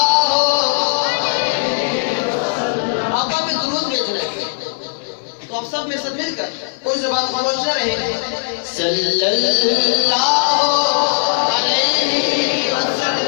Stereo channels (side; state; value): right; silent; digital silence